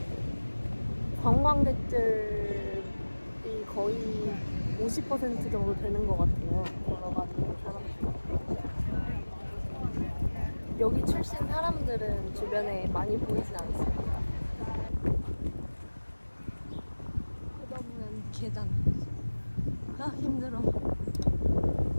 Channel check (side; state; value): both; inverted; correlation -1.00